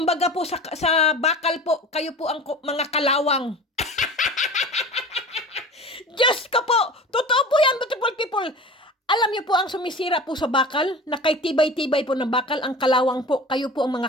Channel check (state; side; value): normal; both; correlation 0.37